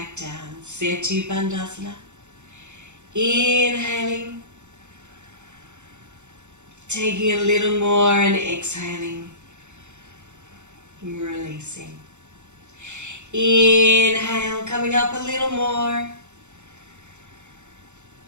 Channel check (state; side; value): late; left; 0.83 ms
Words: down. Setu Bandhasana. Inhaling. Taking a little more and exhaling. Releasing. Inhale, coming up a little more.